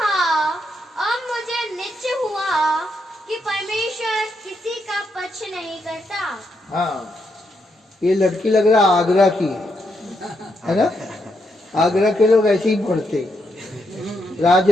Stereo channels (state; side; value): normal; both; correlation 0.80